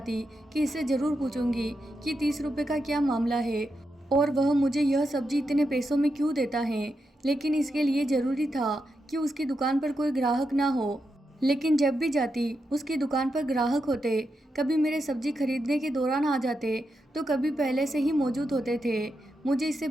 कि इससे ज़रूर पूछूंगी कि 30 रुपये का क्या मामला है और वह मुझे यह सब्जी इतने पैसों में क्यों देता है, लेकिन इसके लिए ज़रूरी था कि उसकी दुकान पर कोई ग्राहक ना हो। लेकिन जब भी जाती उसकी दुकान पर ग्राहक होते, कभी मेरे सब्जी खरीदने के दौरान आ जाते तो कभी पहले से ही मौजूद होते थे। मुझे इससे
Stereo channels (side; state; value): both; normal; correlation 0.86